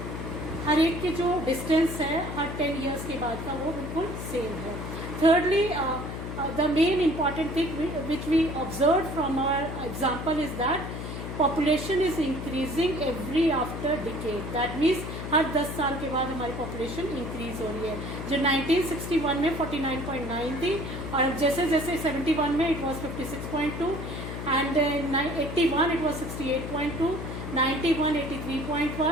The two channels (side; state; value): left; noise; hum, 6 dB below the sound